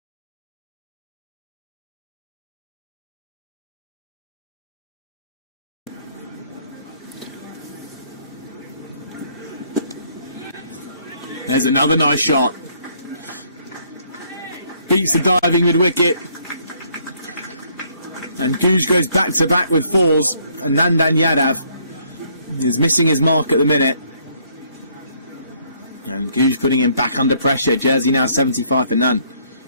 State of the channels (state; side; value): inverted; both; correlation -0.66